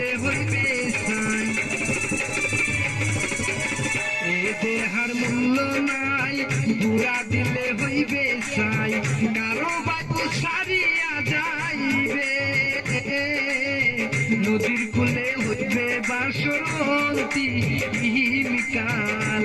হইবে সাই, এ দেহার মূল্য নাই পুরা দিলে হইবে সাই, কারো বাবু সারিয়া যাইবে, নদীর কূলে হইবে বাসন্তী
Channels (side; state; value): both; identical; correlation 1.00